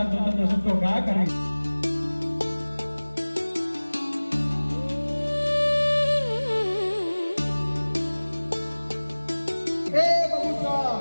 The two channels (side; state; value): both; inverted; correlation -1.00